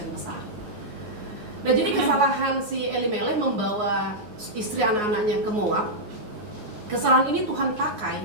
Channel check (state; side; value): late; left; 9.5 ms